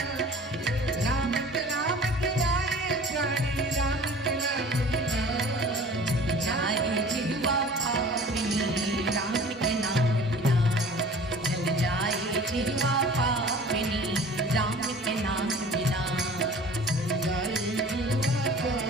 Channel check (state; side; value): normal; both; correlation 0.45